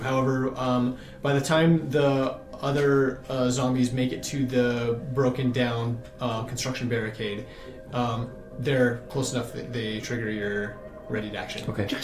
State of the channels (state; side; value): identical; both; correlation 1.00